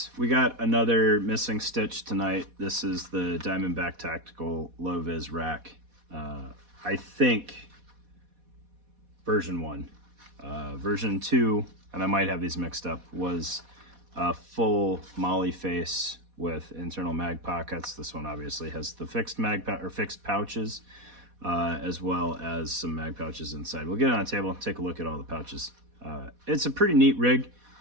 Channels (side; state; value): left; late; 4.1 ms